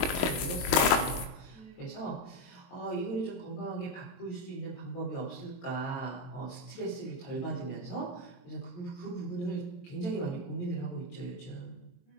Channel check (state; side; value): late; right; 23 ms